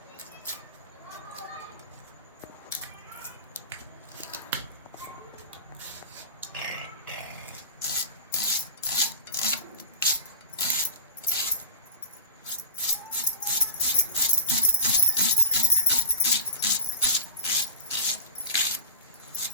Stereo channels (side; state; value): both; inverted; correlation -0.32